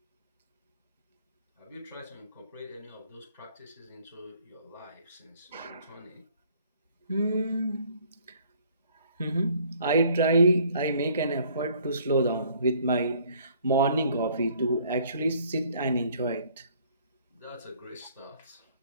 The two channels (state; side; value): inverted; both; correlation -0.60